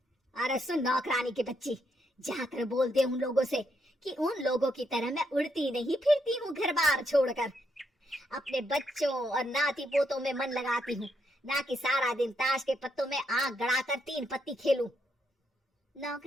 अरे सुन नौकरानी के बच्ची, जाकर बोल दे उन लोगों से कि उन लोगों की तरह मैं उड़ती नहीं फिरती हूँ घर बार छोड़कर। अपने बच्चों और नाती पोतों में मन लगाती हूँ, ना कि सारा दिन ताश के पत्तों में आंख गड़ाकर 3 पत्ती खेलूं।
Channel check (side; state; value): both; normal; correlation 0.78